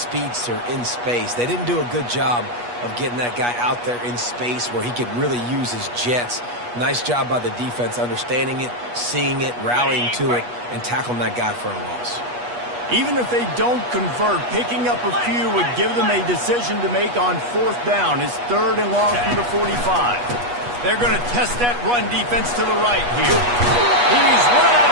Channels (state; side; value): late; left; 8.3 ms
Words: in space. They didn't do a good job of getting that guy out there in space where he could really use his jets. Nice job by the defense understanding it, seeing it, rallying to it, and tackling that guy for a loss. Even if they don't convert, picking up a few would give them a decision to make on 4th down. It's 3rd and long from the 45. They're going to test that run defense to the right here. He's run out